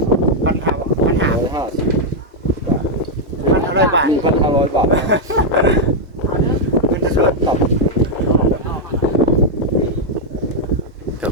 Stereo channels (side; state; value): both; normal; correlation -0.02